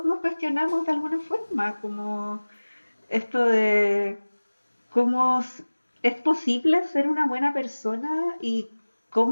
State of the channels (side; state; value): both; inverted; correlation -1.00